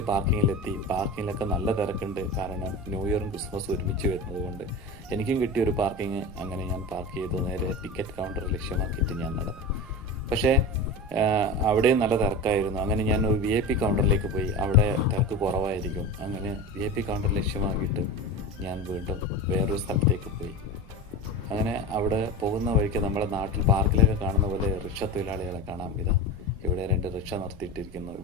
പാർക്കിങ്ങിലെത്തി. പാർക്കിങ്ങിലൊക്കെ നല്ല തിരക്കുണ്ട്. കാരണം ന്യൂ ഇയറും ക്രിസ്മസും ഒരുമിച്ച് വരുന്നത് കൊണ്ട് എനിക്കും കിട്ടിയൊരു പാർക്കിങ്. അങ്ങനെ ഞാൻ പാർക്ക് ചെയ്തു. നേരെ ടിക്കറ്റ് കൗണ്ടർ ലക്ഷ്യമാക്കിയിട്ട് ഞാൻ നടന്നു. പക്ഷേ അവിടെയും നല്ല തിരക്കായിരുന്നു. അങ്ങനെ ഞാൻ ഒരു VIP കൗണ്ടറിലേക്ക് പോയി. അവിടെ തിരക്ക് കുറവായിരിക്കും. അങ്ങനെ VIP കൗണ്ടർ ലക്ഷ്യമാക്കിയിട്ട് ഞാൻ വീണ്ടും വേറൊരു സ്ഥലത്തേക്ക് പോയി. അങ്ങനെ അവിടെ പോകുന്ന വഴിക്ക് നമ്മുടെ നാട്ടിൽ പാർക്കിലൊക്കെ കാണുന്ന പോലെ റിക്ഷ തൊഴിലാളികളെ കാണാം. ഇവിടെ 2 റിക്ഷ നിർത്തിയിട്ടിരിക്കുന്നു.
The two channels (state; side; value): noise; right; rumble, 20 dB below the sound